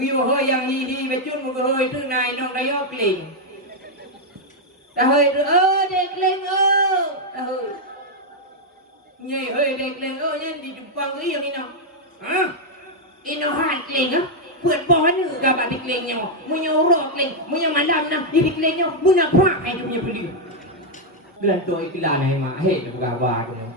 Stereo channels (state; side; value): normal; both; correlation 0.00